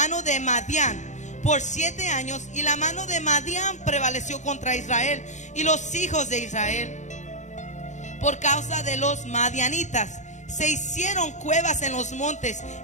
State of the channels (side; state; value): right; late; 0.35 ms